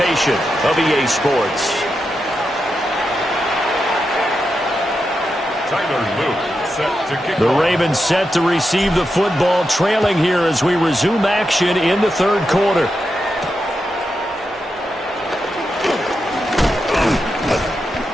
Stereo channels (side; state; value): both; normal; correlation 0.87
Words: of EA Sports. Tyler Luke set to kick The off. Ravens set to receive the football, trailing here as we resume action in the third quarter.